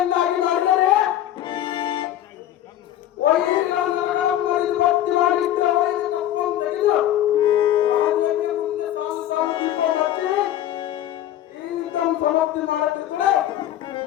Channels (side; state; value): right; quieter; 12.3 dB